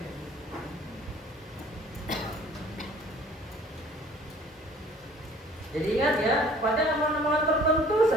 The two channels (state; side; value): normal; both; correlation 0.52